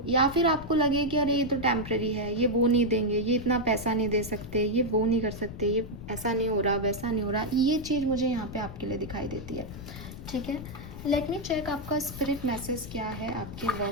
या फिर आपको लगे कि अरे ये तो टेम्प्रेरी है, ये वो नहीं देंगे, ये इतना पैसा नहीं दे सकते, ये वो नहीं कर सकते, ये ऐसा नहीं हो रहा, वैसा नहीं हो रहा। ये चीज़ मुझे यहाँ पे आपके लिए दिखाई देती है। ठीक है, लेट मी चेक आपका स्पिरिट मैसेज क्या है आपके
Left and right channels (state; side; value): noise; left; rumble, 11 dB below the sound